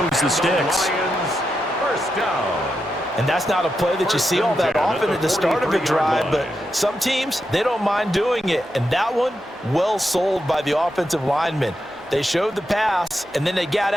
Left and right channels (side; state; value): both; normal; correlation 0.86